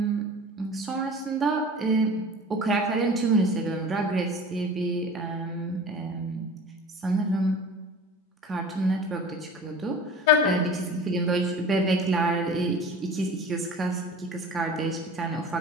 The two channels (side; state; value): both; normal; correlation 0.40